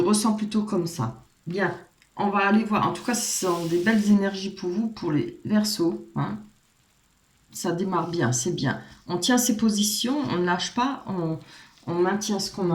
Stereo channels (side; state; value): both; identical; correlation 1.00